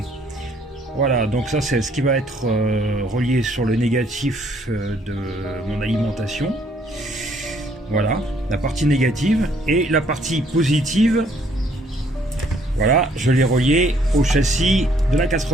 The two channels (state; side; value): normal; both; correlation 0.65